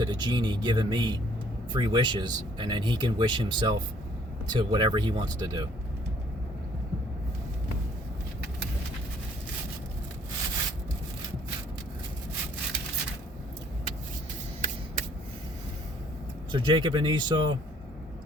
the genie giving me 3 wishes, and then he can wish himself to whatever he wants to do. So Jacob and Esau,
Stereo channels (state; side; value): normal; both; correlation 0.61